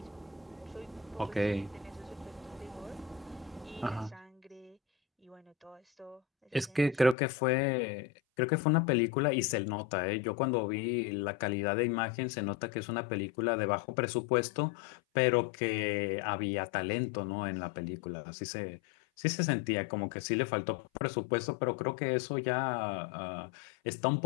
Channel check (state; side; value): drops out; right; at 7.2 s